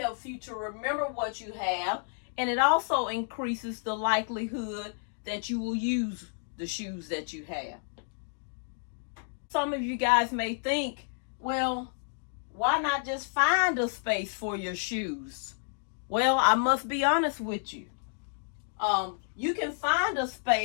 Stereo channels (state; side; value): silent; right; digital silence